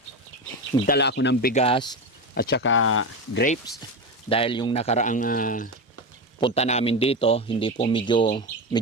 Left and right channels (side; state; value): both; normal; correlation 0.18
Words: nagdala ako ng bigas at saka grapes dahil yung nakaraang punta namin dito hindi po medyo